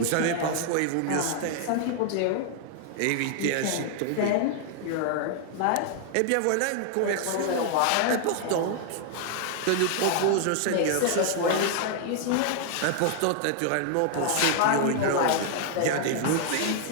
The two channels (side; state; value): both; different; correlation 0.00